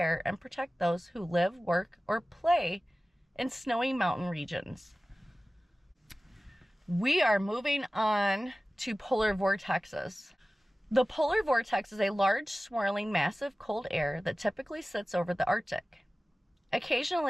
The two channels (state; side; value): normal; both; correlation 0.97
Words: and protect those who live, work, or play in snowy mountain regions. We are moving on to polar vortexes. The polar vortex is a large, swirling, massive cold air that typically sits over the Arctic.